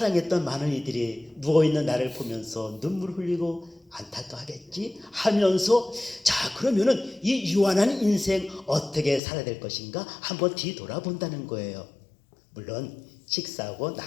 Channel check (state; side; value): drops out; right; at 9.2 s